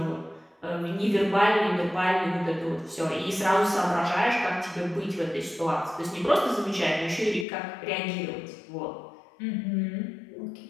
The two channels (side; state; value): right; drops out; at 7.5 s